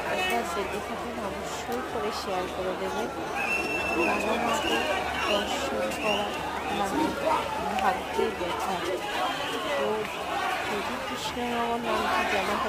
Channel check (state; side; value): identical; both; correlation 1.00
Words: একবার দেখে থাকেন অবশ্যই করে শেয়ার করে দেবেন। বাঘা মাকে দর্শন করা মানে ভাগ্যের ব্যাথা। তো যদি কৃষ্ণনগর নামটি জানা